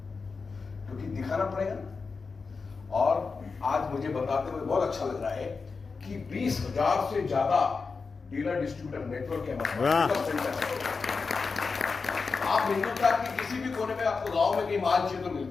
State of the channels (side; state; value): right; quieter; 4.7 dB